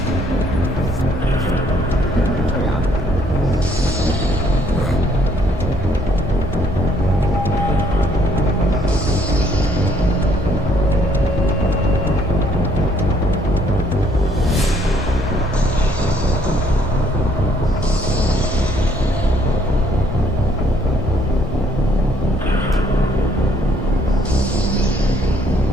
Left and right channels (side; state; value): both; normal; correlation 0.66